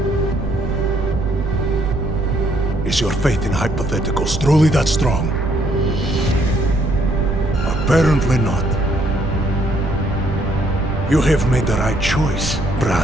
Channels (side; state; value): right; noise; rumble, 6 dB below the sound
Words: Is your faith in hypotheticals truly that strong? Apparently not. You have made the right choice,